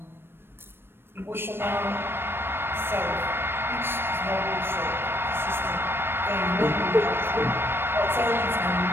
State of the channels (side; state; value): left; late; 0.11 ms